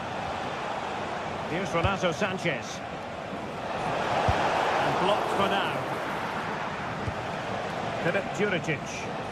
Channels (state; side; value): identical; both; correlation 1.00